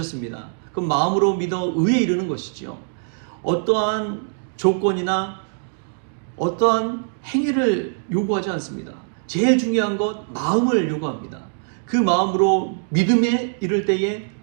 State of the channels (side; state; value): left; silent; digital silence